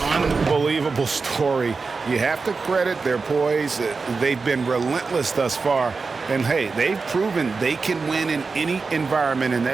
Unbelievable story. You have to credit their poise. They've been relentless thus far. And, hey, they've proven they can win in any environment, and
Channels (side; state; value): left; quieter; 4.4 dB